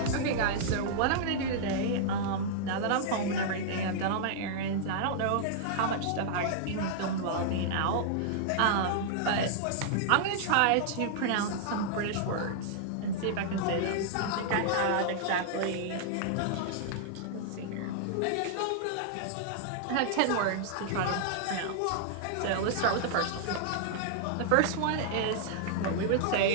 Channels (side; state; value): both; different; correlation -0.01